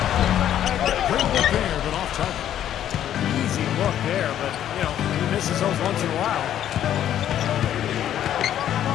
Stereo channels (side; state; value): right; quieter; 10.9 dB